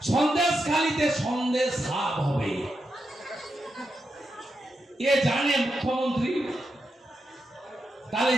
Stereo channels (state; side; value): normal; both; correlation 0.86